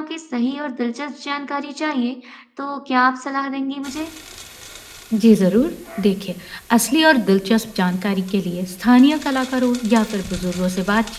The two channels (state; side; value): identical; both; correlation 1.00